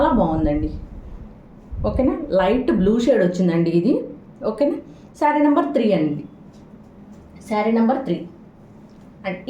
బాగుందండి, ఓకేనా. లైట్ బ్లూ షేడ్ వచ్చిందండి ఇది, ఓకేనా. శారీ నెంబర్ 3 అండి, శారీ నెంబర్ 3. అండ్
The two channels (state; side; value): identical; both; correlation 1.00